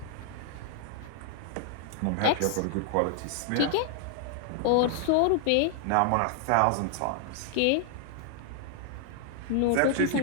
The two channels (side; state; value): both; different; correlation -0.01